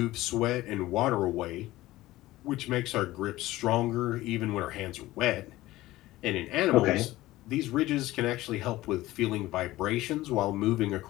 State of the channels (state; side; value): quieter; right; 17.2 dB